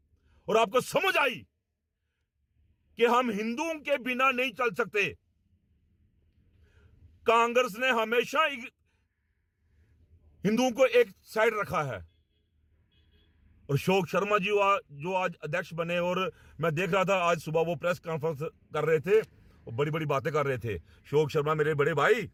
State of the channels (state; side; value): identical; both; correlation 1.00